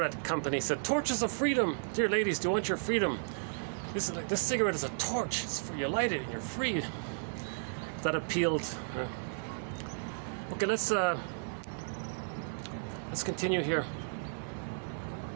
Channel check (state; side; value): silent; left; digital silence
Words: company said, "Torches of freedom. Dear ladies, do you want your freedom? This cigarette is a torch. It's for you light it and you're free." That appealed. Okay, let's continue here.